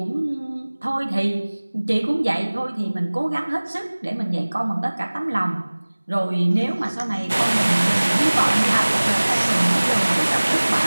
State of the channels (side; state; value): both; inverted; correlation -1.00